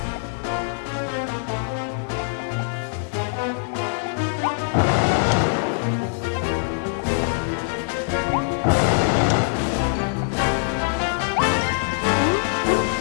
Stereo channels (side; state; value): right; silent; digital silence